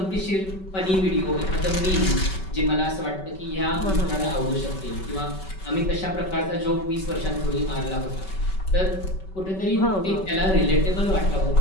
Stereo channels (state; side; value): late; right; 5.3 ms